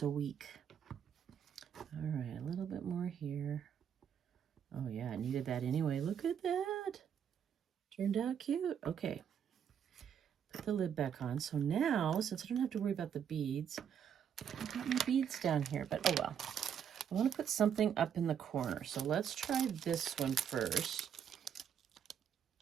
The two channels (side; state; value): left; quieter; 8.3 dB